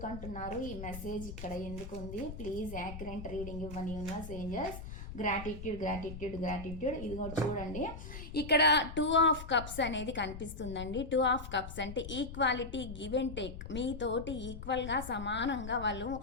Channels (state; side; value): noise; left; rumble, 10 dB below the sound